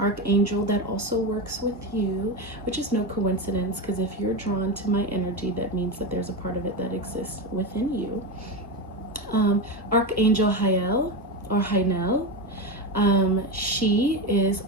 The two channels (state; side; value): normal; both; correlation 0.16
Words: that also works with you, which is no coincidence, because if you're drawn to my energy, that means that there's a part of it that exists within you. Archangel Hael or Hainel. She is